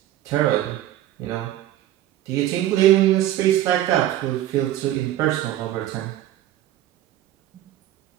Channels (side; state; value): left; quieter; 13.4 dB